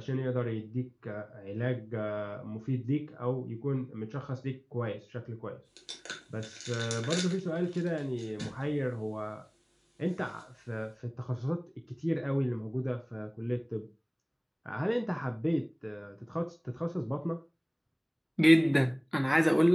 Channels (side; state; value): both; identical; correlation 1.00